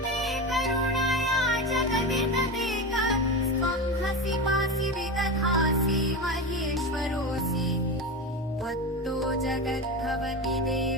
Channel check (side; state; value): both; normal; correlation 0.22